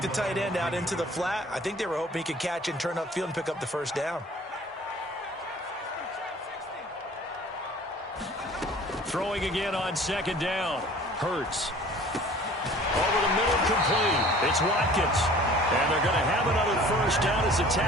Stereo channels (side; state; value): both; normal; correlation 0.48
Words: the tight end out into the flat. I think they were hoping he could catch and turn upfield and pick up the first down. Throwing again on 2nd down. Hurts. Over the middle, complete. It's Watkins. And they're going to have another first down as the